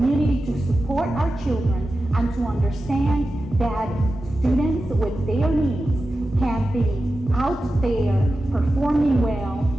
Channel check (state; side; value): normal; both; correlation 0.93